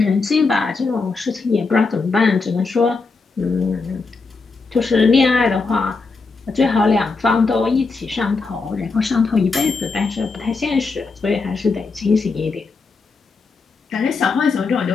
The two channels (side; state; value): right; quieter; 4.3 dB